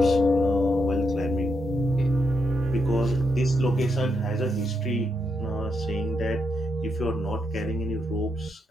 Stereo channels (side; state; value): both; normal; correlation 0.81